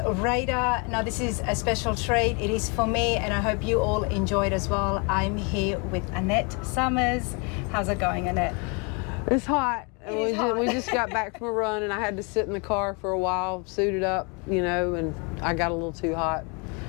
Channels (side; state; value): right; quieter; 32.9 dB